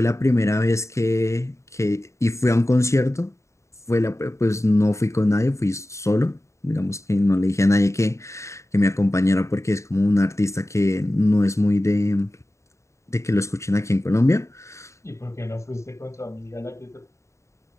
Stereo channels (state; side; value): late; right; 0.14 ms